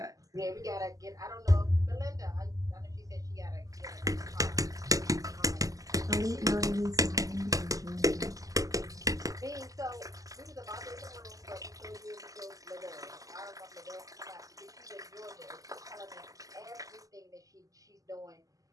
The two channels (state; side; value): late; left; 0.17 ms